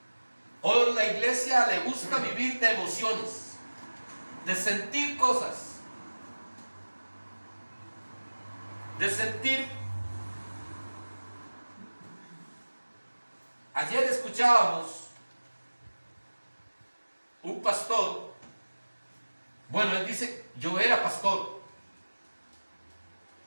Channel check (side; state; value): both; inverted; correlation -1.00